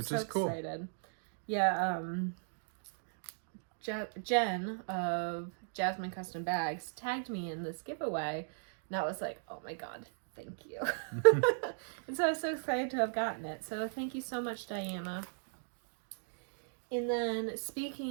so excited. Yeah, Jen of Jasmine Custom Bags tagged me in this giveaway, and I was like, oh my god, thank you. And so I was so excited to have gotten it, so thank you so much, Diana. And then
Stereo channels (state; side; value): silent; left; digital silence